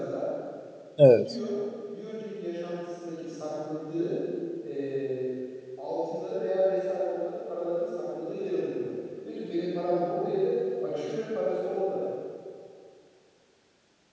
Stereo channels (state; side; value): identical; both; correlation 1.00